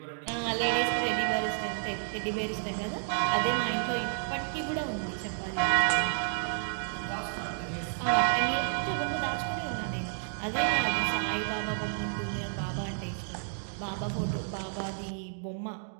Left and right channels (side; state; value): left; silent; digital silence